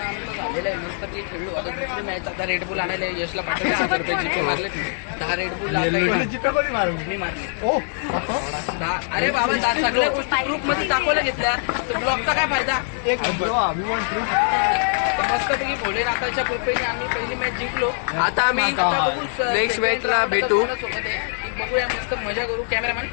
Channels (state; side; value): silent; right; 61 dB below the other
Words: आमचं झालेलं आहे मस्त ते खेळलो. आता दुसरी मॅच आता रेड बुल आणायला यशला पाठवले 1000 रुपये जीपे मारले 10 रेड बुल मी मारले 10. अरे बाबा सगळ्या गोष्टी ग्रुप मध्ये दाखवल्या घेतल्या तर ब्लॉगचा काय फायदा. तर मस्तपैकी भोलेनाथाच्या कृपेने आम्ही पहिली मॅच जिंकलो. आता आम्ही आता बघू नेक्स्ट मॅचला भेटू. सोबत आहे बघूया मस्त मजा करू. कॅमेरामॅन